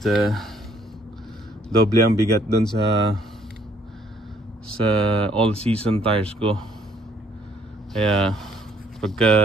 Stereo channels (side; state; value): both; normal; correlation 0.64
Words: doble ang bigat dun sa all season tires ko. Kaya